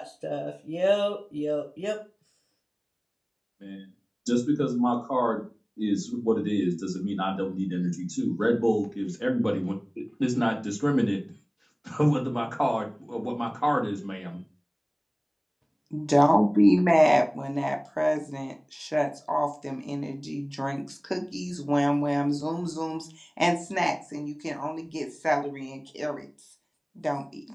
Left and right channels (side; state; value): both; identical; correlation 1.00